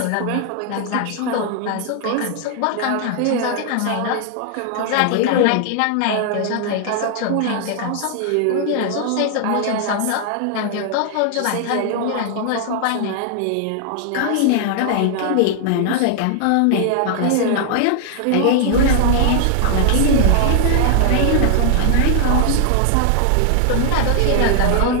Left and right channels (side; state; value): both; different; correlation 0.00